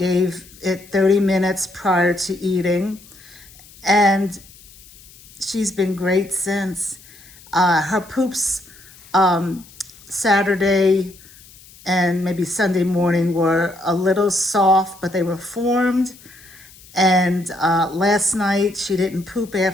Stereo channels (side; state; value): left; noise; hiss, 23 dB below the sound